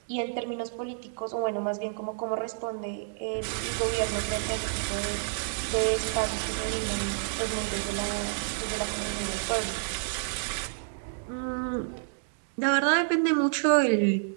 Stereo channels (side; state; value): left; silent; digital silence